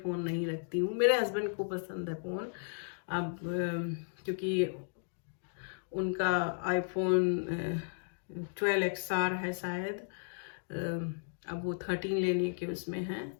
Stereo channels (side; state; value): right; silent; digital silence